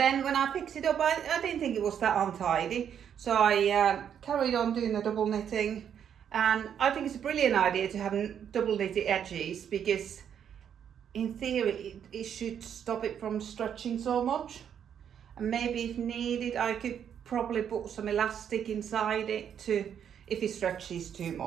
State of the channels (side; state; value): left; quieter; 8.6 dB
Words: when I picked it up, I didn't think it was that untidy, so I carried on doing the double knitting. And I think it's a brilliant idea to have double knitted edges, because in theory it should stop it from stretching so much. And maybe if needed, I could probably put some elastic inside it to, if it stretches too